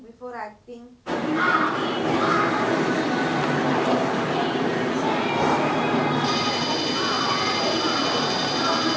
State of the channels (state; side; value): identical; both; correlation 1.00